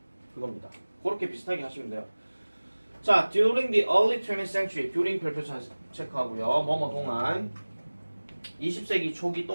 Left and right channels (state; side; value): inverted; both; correlation -1.00